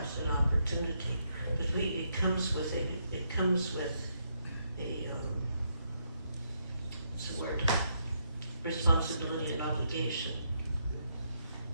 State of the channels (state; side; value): inverted; both; correlation -0.77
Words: an opportunity. But it comes with a what's the word? Responsibility and obligation.